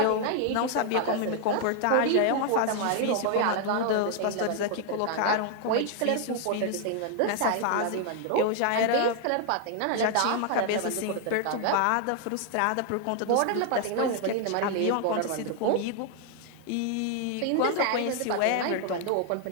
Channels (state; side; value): different; both; correlation 0.00